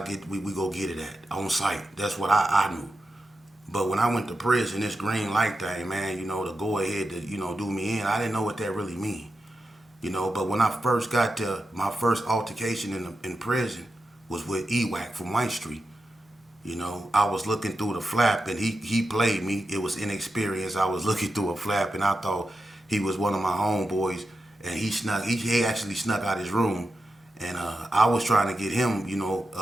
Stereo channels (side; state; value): both; normal; correlation 0.89